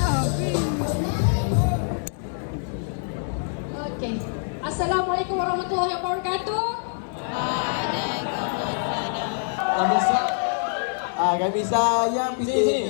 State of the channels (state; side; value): silent; right; digital silence